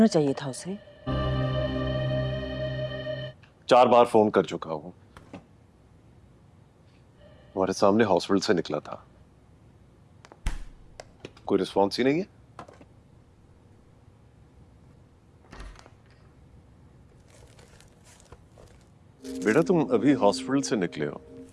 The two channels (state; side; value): identical; both; correlation 1.00